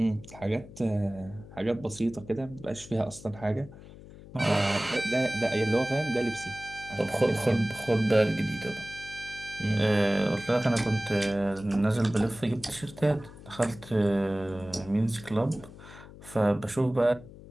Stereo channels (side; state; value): left; noise; hum, 18 dB below the sound